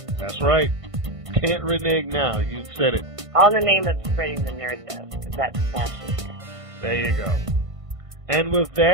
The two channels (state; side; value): late; left; 1.5 ms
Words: That's right. Can't renege now. You said it. All in the name of spreading the nerd, though, because that's fashion. There you go. And with